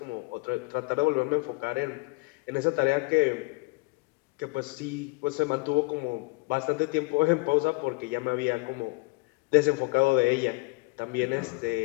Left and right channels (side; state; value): right; quieter; 26.9 dB